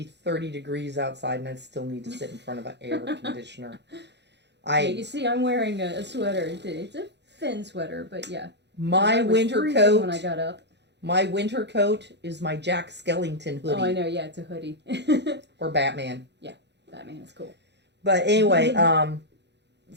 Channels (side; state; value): left; late; 0.50 ms